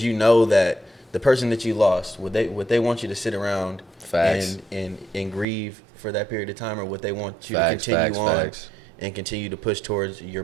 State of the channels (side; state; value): left; drops out; at 5.5 s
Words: you know that the person that you lost, would they want you to sit around and grieve for that period of time, or would they want you to continue on and continue to push towards